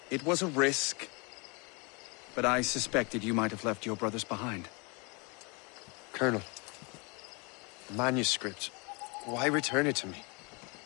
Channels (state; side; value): quieter; right; 30.6 dB